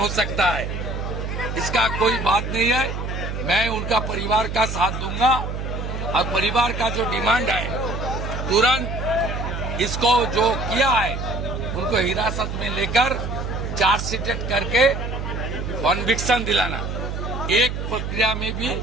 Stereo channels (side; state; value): right; noise; hum, 4 dB below the sound